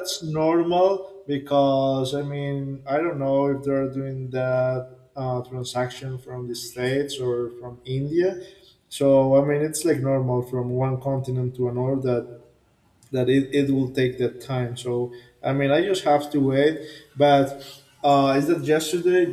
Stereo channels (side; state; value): both; identical; correlation 1.00